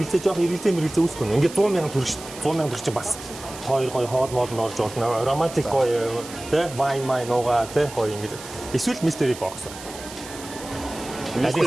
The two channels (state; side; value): noise; right; hiss, 14 dB below the sound